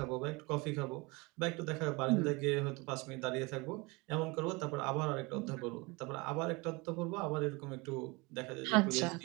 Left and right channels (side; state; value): left; quieter; 25.9 dB